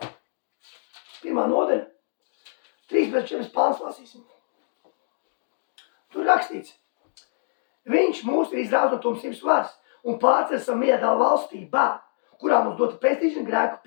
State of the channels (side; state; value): right; silent; digital silence